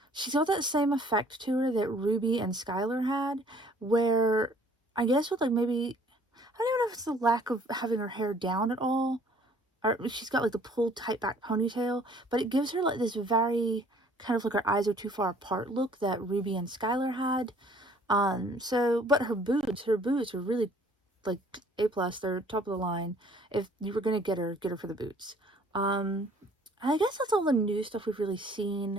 she's got that same effect to her that Ruby and Skylar had, where I guess with, like, maybe... I don't even know if it's the lack of having her hair down at all, or she's got, like, the pulled tight back ponytail, but it gives her, like, this very kind of, like, her eyes are too far apart look that Ruby and Skylar had. But her boots are really... like A+, they're top of the line. If you were gonna get her for the boots. I guess that's all the new stuff we've really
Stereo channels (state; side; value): normal; both; correlation 0.57